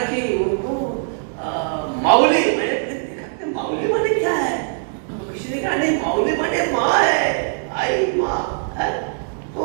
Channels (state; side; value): silent; left; 65 dB below the other